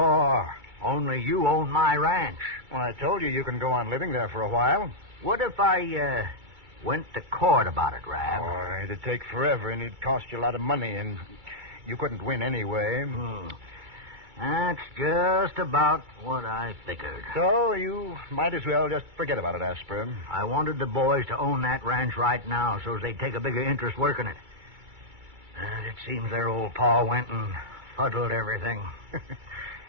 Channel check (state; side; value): late; left; 2.3 ms